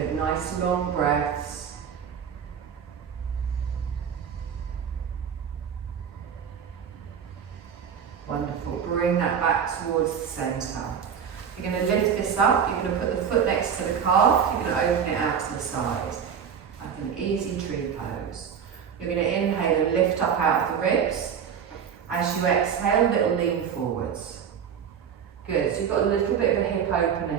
nice long breaths. Wonderful, bring that back towards the centre. You're going to lift this up, you're going to put the foot next to the calf, you're going to open it out to the side, like an easy tree pose. You're going to inhale and lift up out of the ribs. As you exhale, little lean forwards. Good, so you've got a little bit of a hip opener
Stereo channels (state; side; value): quieter; left; 7.6 dB